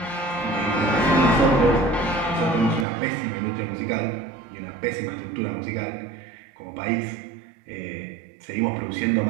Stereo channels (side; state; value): left; drops out; at 2.9 s